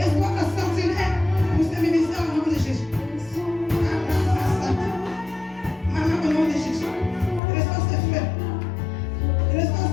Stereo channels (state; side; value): drops out; right; at 7.4 s